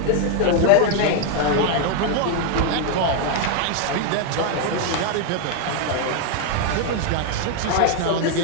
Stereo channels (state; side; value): different; both; correlation 0.01